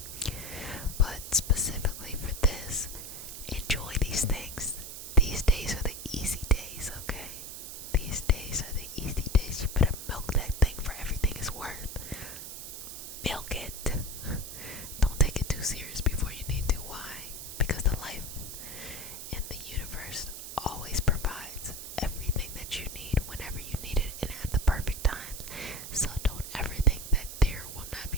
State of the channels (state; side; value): noise; right; hiss, 9 dB below the sound